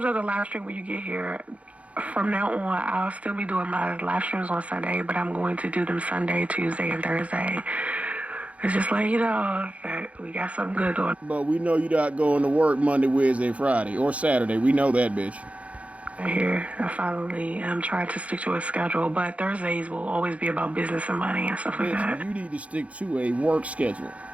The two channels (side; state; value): left; late; 0.065 ms